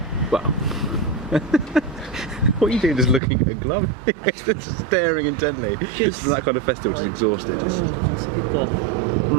well, what are you doing? Just looking at a glove, just staring intently. Just that kind of festival, just exhausted. Oh, it's a good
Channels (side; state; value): left; drops out; at 3.2 s